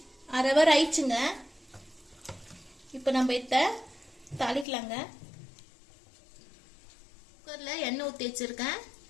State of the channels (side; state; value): right; drops out; at 4.7 s